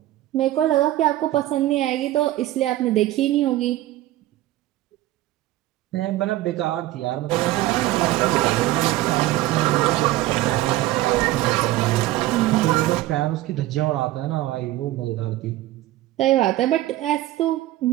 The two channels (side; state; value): left; quieter; 15.7 dB